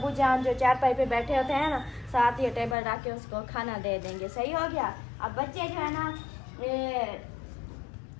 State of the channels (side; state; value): right; drops out; at 2.8 s